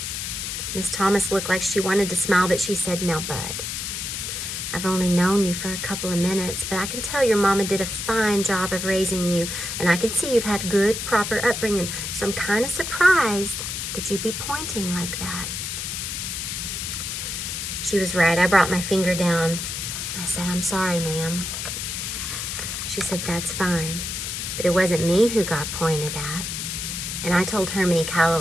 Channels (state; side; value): noise; left; hiss, 4 dB below the sound